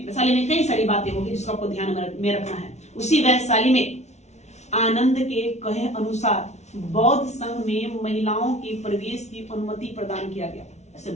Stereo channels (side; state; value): right; late; 0.32 ms